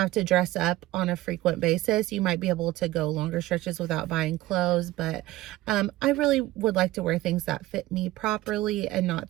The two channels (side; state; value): left; quieter; 16.8 dB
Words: to dress up on a frequent basis, you might be able to go longer stretches without buying clothes. But I really would like to wear things that fit me properly and not